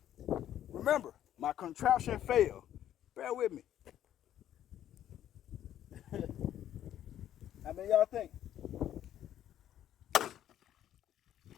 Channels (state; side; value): quieter; right; 11.3 dB